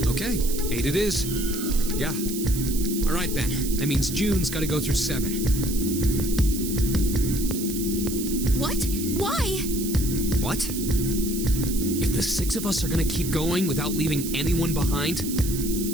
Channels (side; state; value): right; noise; hiss, 7 dB below the sound